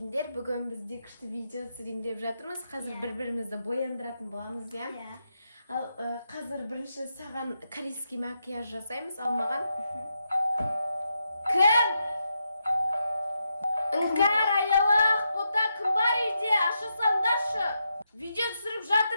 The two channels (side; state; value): both; inverted; correlation -0.84